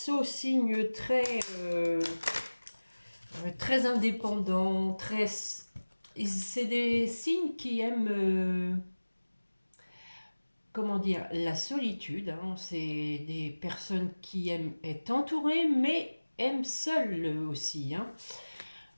signe très indépendant, très... C'est des signes qui aiment, comment dire, la solitude. Hein. C'est des personnes qui aiment être entourées, mais aiment seules aussi. Hein.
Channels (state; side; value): inverted; both; correlation -1.00